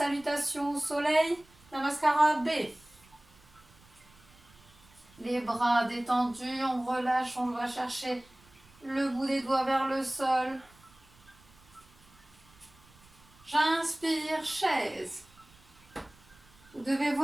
au soleil, Namaskara B. Les bras détendus, on relâche, on va chercher le bout des doigts vers le sol. J'inspire, chaise. Vous devez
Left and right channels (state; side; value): noise; right; rumble, 27 dB below the sound